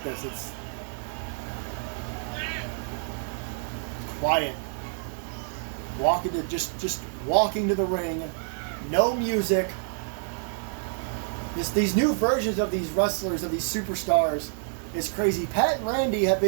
this. It's quiet. Just walking to the ring. No music. These new versions of these wrestlers, of these superstars, is crazy. Pat and Randy have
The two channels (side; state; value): left; silent; digital silence